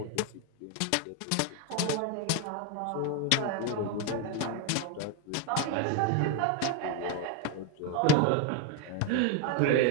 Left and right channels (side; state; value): both; different; correlation 0.01